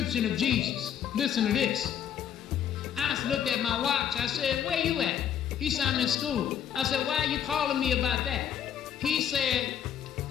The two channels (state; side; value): quieter; right; 9.3 dB